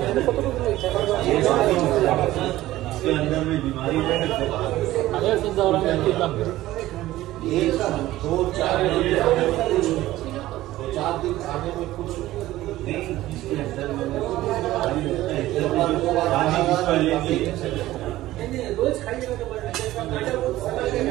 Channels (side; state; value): left; quieter; 15.8 dB